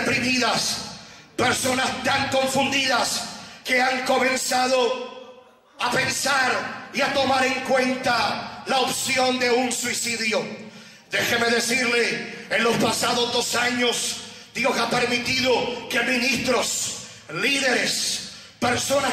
personas tan confundidas, que han comenzado a pensar y a tomar en cuenta la opción de un suicidio. Déjeme decirle, en los pasados 2 años, Dios ha permitido que ministros, líderes, personas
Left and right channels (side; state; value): both; identical; correlation 1.00